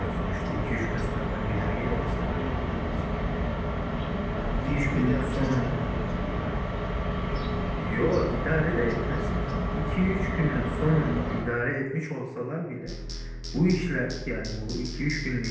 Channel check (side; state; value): both; identical; correlation 1.00